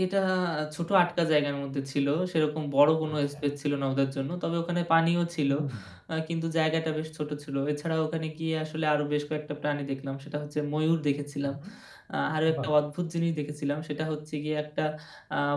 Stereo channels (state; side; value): identical; both; correlation 1.00